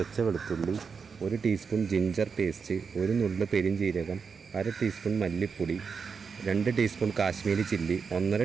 വെളുത്തുള്ളി, 1 ടീസ്പൂൺ ജിഞ്ചർ പേസ്റ്റ്, 1 നുള്ള് പെരിഞ്ജീരകം, 1/2 ടീസ്പൂൺ മല്ലിപ്പൊടി, 2 ടീസ്പൂൺ കാശ്മീരി ചില്ലി,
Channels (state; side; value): quieter; left; 5.7 dB